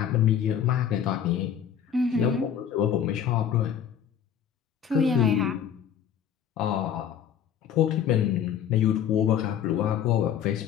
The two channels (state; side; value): quieter; right; 8.8 dB